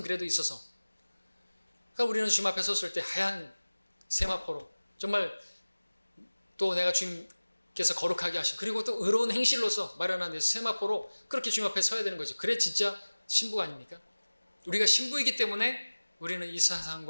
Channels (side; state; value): both; inverted; correlation -1.00